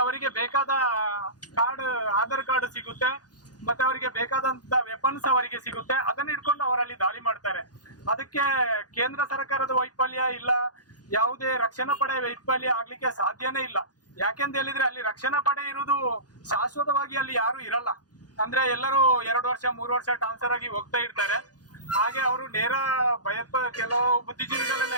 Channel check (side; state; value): right; late; 0.69 ms